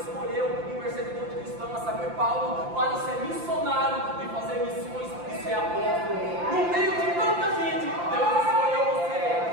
escolheu um perseguidor de cristão, a saber, Paulo, para ser missionário e fazer missões e ser apóstolo. No meio de tanta gente, Deus escolheu você.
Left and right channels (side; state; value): left; late; 5.8 ms